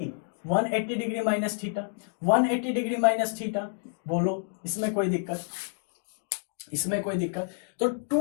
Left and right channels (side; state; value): right; silent; 59 dB below the other